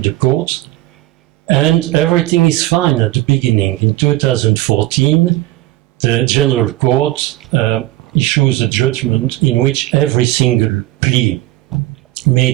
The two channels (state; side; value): quieter; left; 17.1 dB